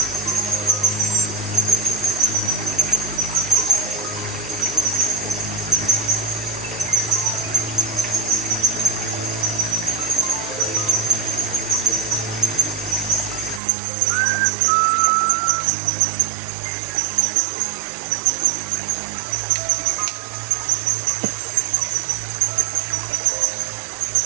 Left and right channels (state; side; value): drops out; left; at 13.6 s